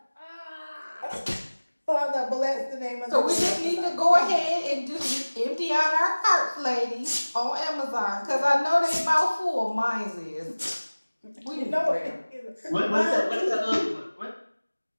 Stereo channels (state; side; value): inverted; both; correlation -1.00